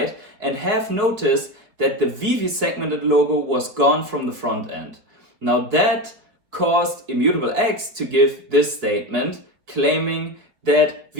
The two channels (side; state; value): left; late; 5.0 ms